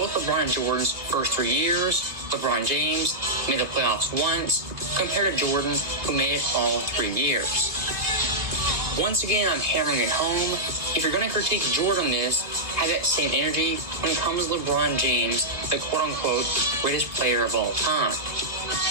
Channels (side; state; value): left; late; 1.6 ms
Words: LeBron and Jordan's first 3 years, LeBron James made the playoffs once, compared to Jordan, who made it all 3 years. Once again, I'm hammering it home. If you're going to critique Jordan on this, have that same energy when it comes to LeBron James, the quote-unquote greatest player of all time.